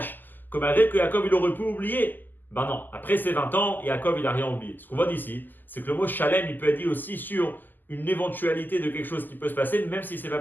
que malgré que Yaakov, il aurait pu oublier, ben non, après ses 20 ans, Yaakov, il n'a rien oublié. Ce qu'on voit d'ici, c'est que le mot Shalem, il peut être dit aussi sur une éventualité de quelque chose qui peut se passer, même si ce n'est pas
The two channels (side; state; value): right; late; 0.088 ms